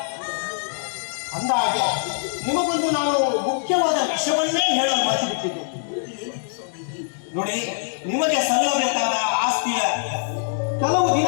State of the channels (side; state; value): right; silent; 63 dB below the other